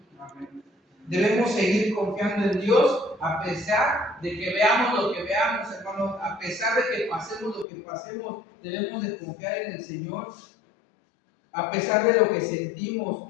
Amén. Debemos seguir confiando en Dios a pesar de que veamos lo que veamos, hermano. A pesar de que pasemos lo que pasemos, debemos de confiar en el Señor. A pesar de lo que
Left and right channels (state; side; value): drops out; right; at 7.7 s